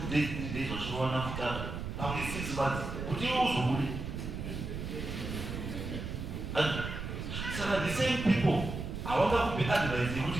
days 3 days vachirowana kutanga pamwe 6 months kuti iwe uzobude. Saka the same people havangakupe advice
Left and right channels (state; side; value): noise; right; rumble, 6 dB below the sound